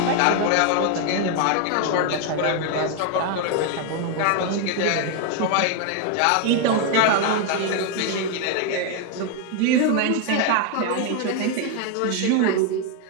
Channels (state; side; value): different; both; correlation 0.01